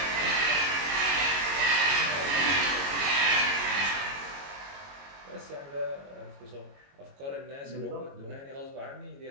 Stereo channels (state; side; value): late; left; 22 ms